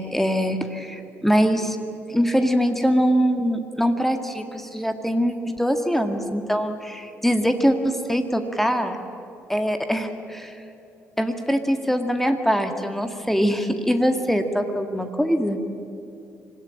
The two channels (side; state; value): both; normal; correlation 0.91